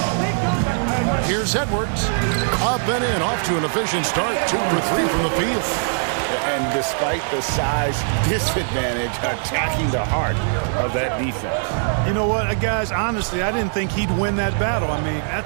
Here's Edwards. Up and in, off to an efficient start. 2 for 3 from the field. And despite the size disadvantage, attacking the heart of that defense. You know what, guys, honestly, I didn't think he'd win that battle. I mean,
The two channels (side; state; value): left; silent; digital silence